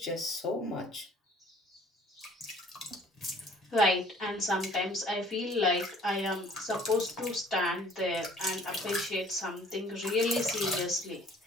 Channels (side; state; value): both; normal; correlation 0.55